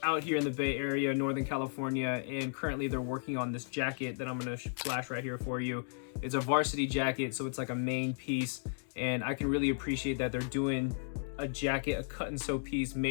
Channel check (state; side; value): silent; right; digital silence